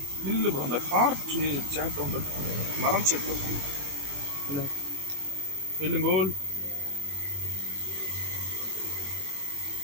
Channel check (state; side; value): late; left; 21 ms